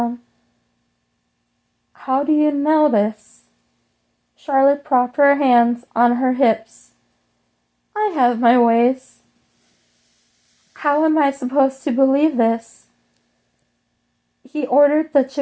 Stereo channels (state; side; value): identical; both; correlation 1.00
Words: How do you know this? Charlotte propped her hands on her hips. I have my ways. How am I supposed to believe this? He ordered the